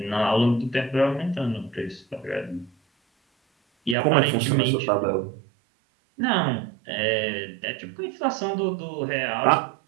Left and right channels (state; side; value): drops out; left; at 4.0 s